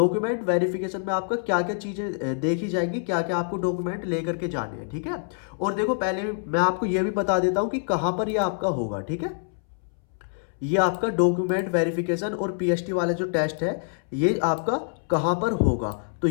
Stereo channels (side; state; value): right; silent; 61 dB below the other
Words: वेरिफिकेशन में आपका क्या क्या चीजें देखी जाएंगी, क्या क्या आपको डॉक्यूमेंट लेकर के जाने हैं, ठीक है। और देखो पहले मैं आपको यह भी बता देता हूं कि कहां पर यह आपका होगा, ठीक है। ये आपका डॉक्यूमेंट वेरिफिकेशन और पीएसटी वाला जो टेस्ट है ये आपका कहां पर होगा। तो